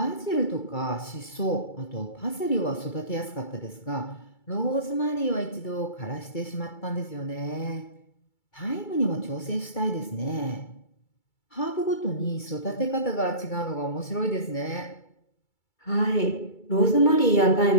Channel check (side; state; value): right; late; 2.3 ms